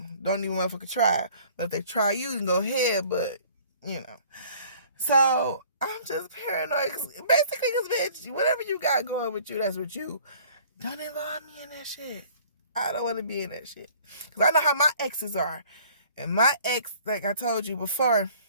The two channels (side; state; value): both; inverted; correlation -0.53